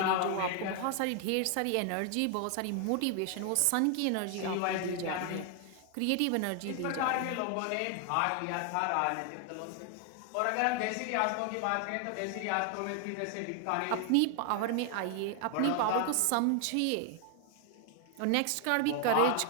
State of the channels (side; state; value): both; different; correlation 0.00